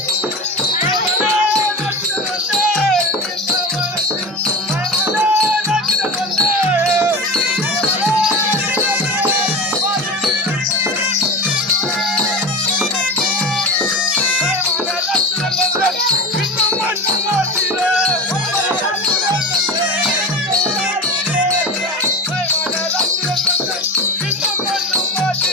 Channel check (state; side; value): normal; both; correlation 0.28